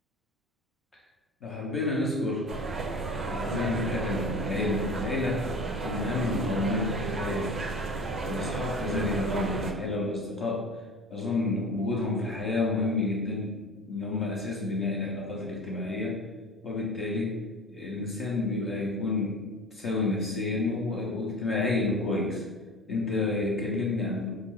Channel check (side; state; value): both; normal; correlation 0.36